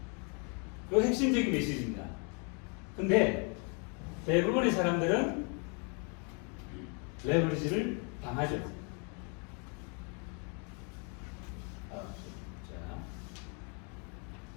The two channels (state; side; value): quieter; right; 36.7 dB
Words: 그 핵심적인 메시지입니다. 근데 대부분의 사람들은 레버리지를 당하죠.